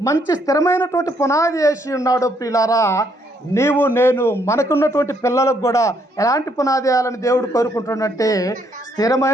మంచి స్థిరమైనటువంటి పునాది వేసి ఉన్నాడో ప్రియులారా, నీవు నేను మనకున్నటువంటి పిల్లలకు కూడా ఎలాంటి పునాది వేయాలని దేవుడు కోరుకుంటున్నట్టే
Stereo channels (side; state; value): both; normal; correlation 0.71